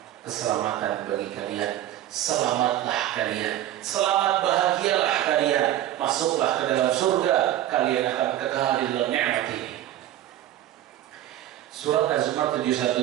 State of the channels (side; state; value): left; quieter; 12.9 dB